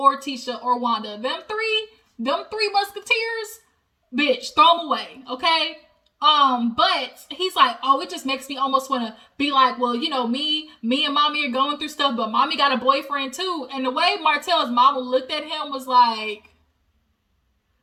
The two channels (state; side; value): identical; both; correlation 1.00